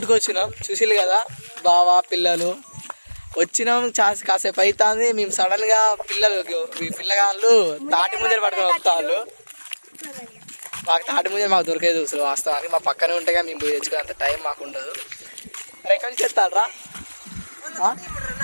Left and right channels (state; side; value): inverted; both; correlation -1.00